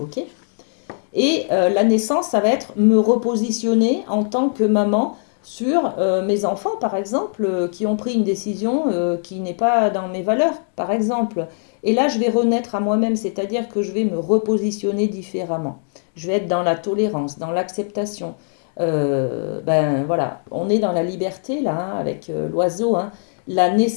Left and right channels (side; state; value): right; silent; 65 dB below the other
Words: ok? Et la naissance, ça va être me repositionner en tant que maman sur mes enfants, par exemple, qui ont pris une décision qui n'est pas dans mes valeurs, par exemple. Et là, je vais renaître à moi-même, c'est-à-dire que je vais me repositionner différemment. Je vais être dans la tolérance, dans l'acceptation. Ben voilà, on est dans la liberté là, hein, avec l'oiseau, hein. La